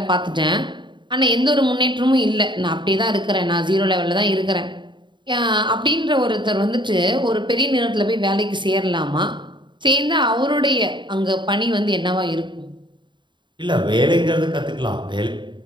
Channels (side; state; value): left; late; 0.23 ms